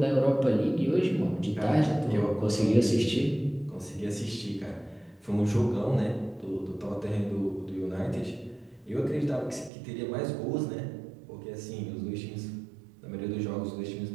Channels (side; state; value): left; drops out; at 9.7 s